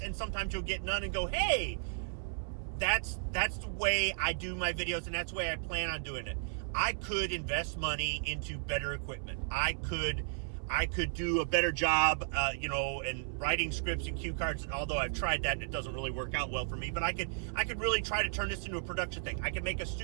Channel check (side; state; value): left; silent; 55 dB below the other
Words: and sometimes you'll get none and go, hey, that's the way I do my videos, and that's the way I plan on doing it. I could invest money into better equipment. I could do a better job, in writing scripts and cue cards. Although I've tried that and it doesn't really work out well for me. But I could really try to turn this into a production thing. I could make a